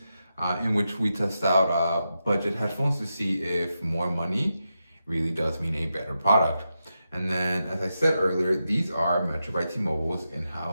in which we test out budget headphones to see if more money really does mean a better product. And then, as I said earlier, these are Metro by T-Mobile's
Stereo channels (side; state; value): both; inverted; correlation -0.88